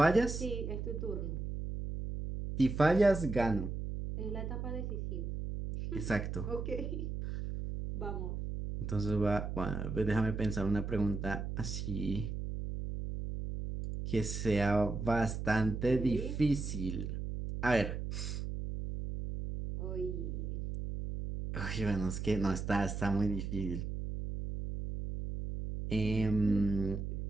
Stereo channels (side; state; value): right; noise; hum, 4 dB below the sound